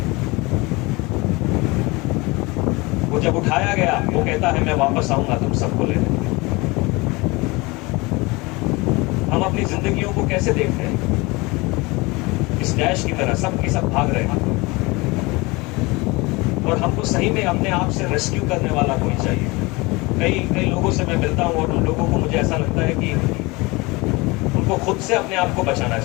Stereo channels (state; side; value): quieter; right; 24.3 dB